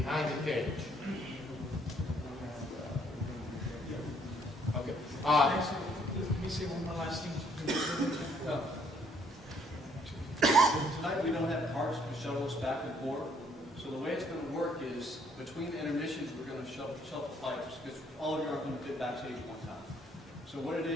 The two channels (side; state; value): both; normal; correlation 0.66